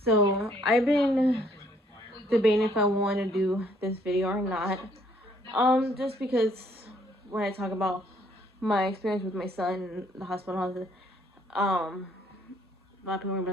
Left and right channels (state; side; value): normal; both; correlation 0.65